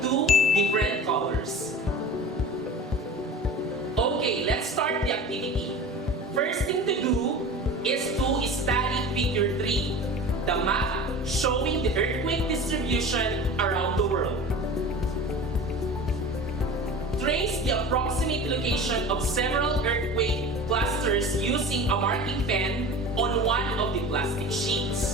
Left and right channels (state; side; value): normal; both; correlation 0.36